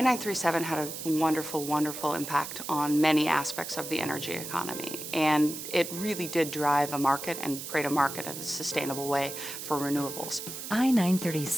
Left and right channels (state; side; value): noise; right; hiss, 8 dB below the sound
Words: had a wonderful, wonderful impact on many aspects of the energy economy, and it really did drive a market and create a market in a sustainable way for renewables.